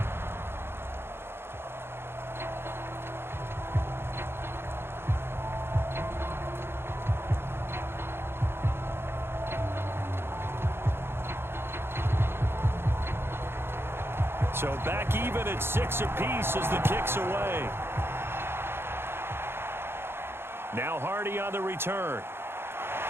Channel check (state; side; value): late; left; 0.11 ms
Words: So back even at 6 apiece as the kick's away. Now Hardy on the return.